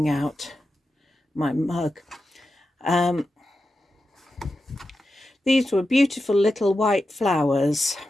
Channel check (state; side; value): normal; both; correlation 0.90